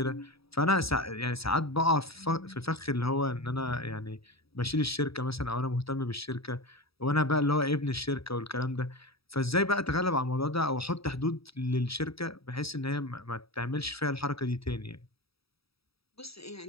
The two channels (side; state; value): right; late; 0.77 ms